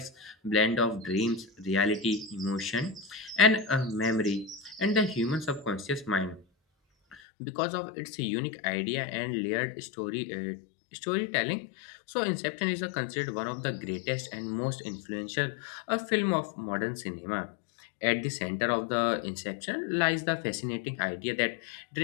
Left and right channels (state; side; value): drops out; right; at 7.2 s